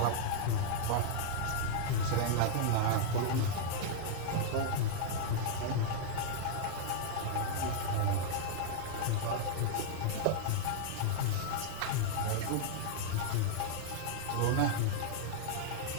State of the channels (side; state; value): both; different; correlation -0.01